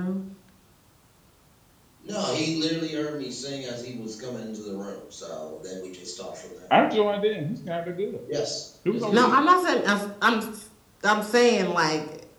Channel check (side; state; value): both; identical; correlation 1.00